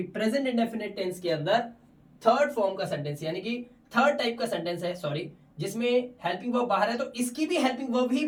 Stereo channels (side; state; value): both; identical; correlation 1.00